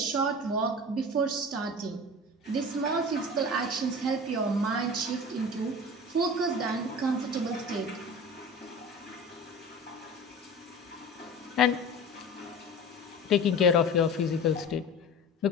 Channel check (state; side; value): normal; both; correlation 0.35